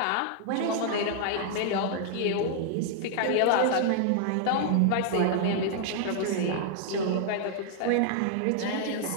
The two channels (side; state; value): both; different; correlation 0.00